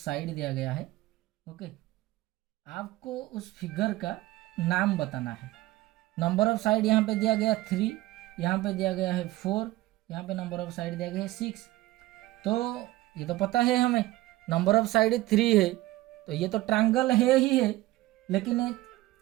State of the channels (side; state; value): left; quieter; 17.5 dB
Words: दिया गया है। ओके, आपको उस फिगर का नाम बताना है। नंबर ऑफ साइड यहाँ पे दिया गया 3, यहाँ पे दिया गया है 4, यहाँ पे नंबर ऑफ साइड दिया गया है 6। तो ये तो पता है हमें, नंबर ऑफ साइड 3 है, तो ये तो ट्रायंगल है ही है, लेकिन